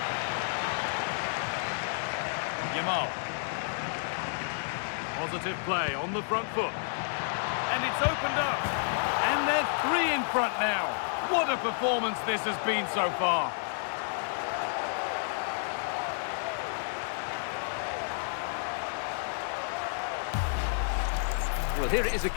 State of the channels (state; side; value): silent; right; digital silence